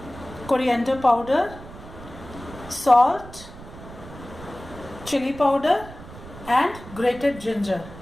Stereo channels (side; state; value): right; noise; rumble, 16 dB below the sound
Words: coriander powder, salt, chili powder and grated ginger.